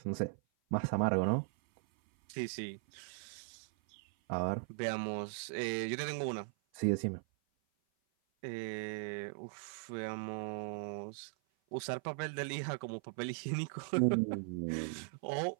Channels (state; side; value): silent; left; 52 dB below the other